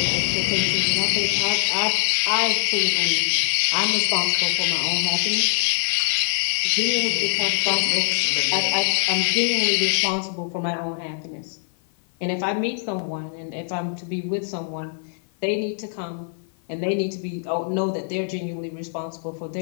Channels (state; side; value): silent; right; 55 dB below the other